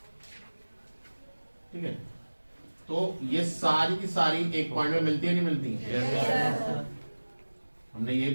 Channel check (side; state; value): both; inverted; correlation -1.00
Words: ठीक है, तो ये सारी की सारी एक पॉइंट में मिलती है नहीं मिलती है? हमने यही